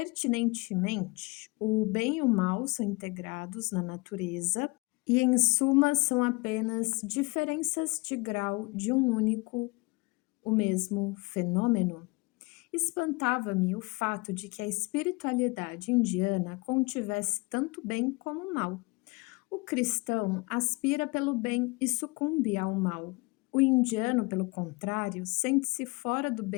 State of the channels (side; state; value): right; quieter; 26.4 dB